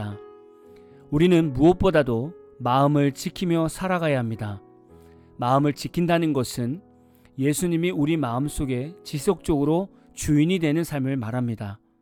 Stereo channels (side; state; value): both; identical; correlation 1.00